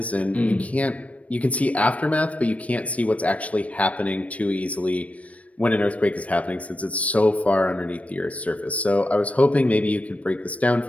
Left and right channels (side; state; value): right; late; 0.066 ms